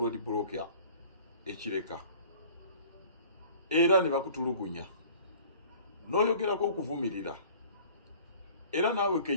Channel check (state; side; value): inverted; both; correlation -0.49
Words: block ekireka era ne bakutulugunya n'oyogerako okuvumirira era naawe